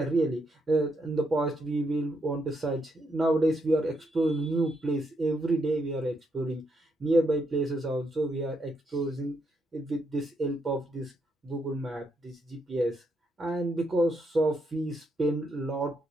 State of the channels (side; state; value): both; normal; correlation 0.78